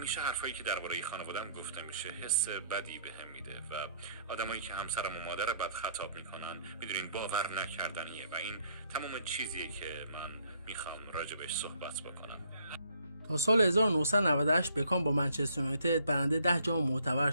حرفایی که درباره خانواده‌ام گفته میشه حس بدی بهم میده و آدمایی که همسرم و مادر بد خطاب میکنن میدونین باور نکردنیه و این تمام چیزیه که من میخوام راجبش صحبت بکنم. تا سال 1998 بکام با منچستر یونایتد برنده 10 جام معتبر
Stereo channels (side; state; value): both; inverted; correlation -0.64